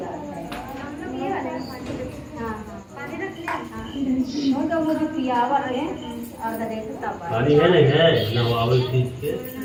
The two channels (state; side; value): identical; both; correlation 1.00